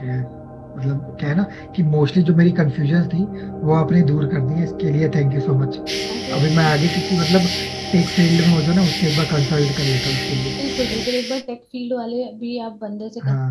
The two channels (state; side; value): identical; both; correlation 1.00